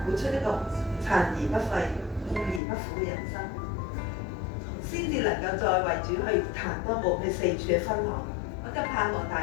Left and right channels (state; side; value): drops out; right; at 2.6 s